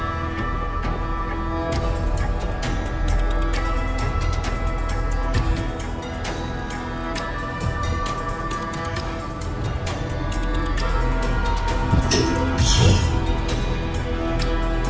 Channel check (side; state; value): both; identical; correlation 1.00